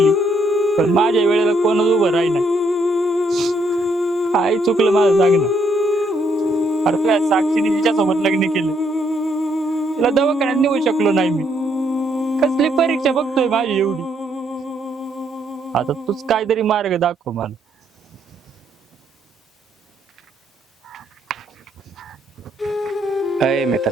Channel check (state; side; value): normal; both; correlation 0.72